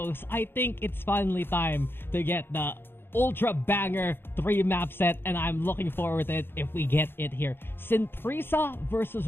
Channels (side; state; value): right; late; 0.10 ms